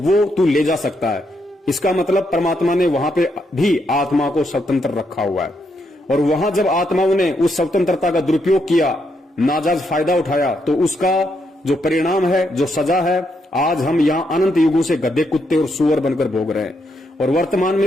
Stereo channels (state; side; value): normal; both; correlation 0.78